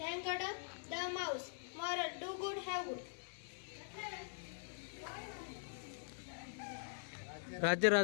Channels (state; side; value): silent; right; digital silence